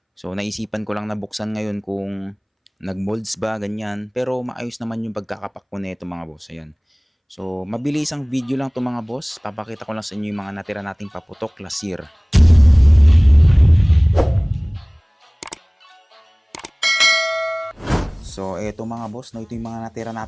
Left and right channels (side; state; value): both; identical; correlation 1.00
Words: So naisipan ko lang na buksan ngayon kung nag-molds ba ganyan. Pero maayos naman yung pagkakapak ko nito mga boss. Ayan. So mabilis ang video lang to mga boss. Papakita ko lang sa inyo yung mga natira nating paputok last year. So, eto mga boss, no, ito yung mga natira